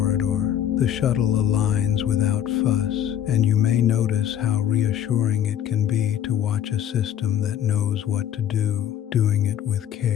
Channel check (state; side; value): quieter; right; 10.4 dB